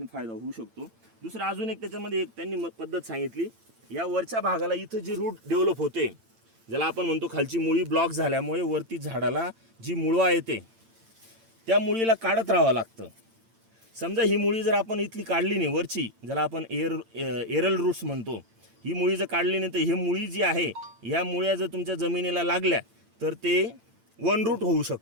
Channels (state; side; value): late; left; 8.9 ms